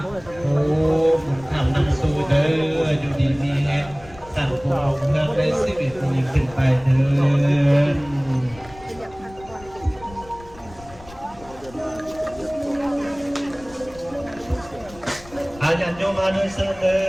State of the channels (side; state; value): left; noise; rumble, 20 dB below the sound